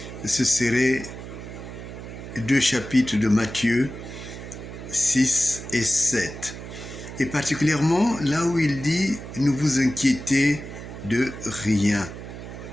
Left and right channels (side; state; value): right; noise; hum, 11 dB below the sound